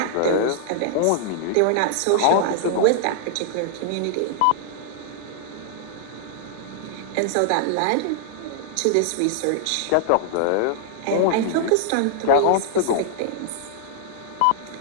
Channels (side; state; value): both; different; correlation -0.01